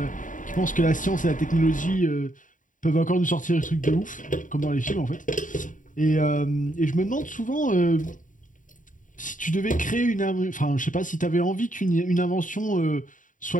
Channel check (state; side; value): late; right; 0.38 ms